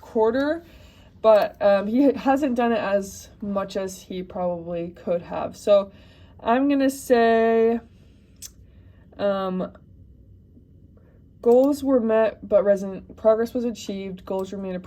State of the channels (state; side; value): identical; both; correlation 1.00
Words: But he hasn't done it as much as he probably could have. So I'm going to say goals were met, but progress was achieved. Goals remain